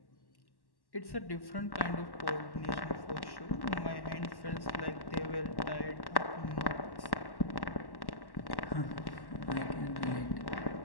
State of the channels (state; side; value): late; right; 1.1 ms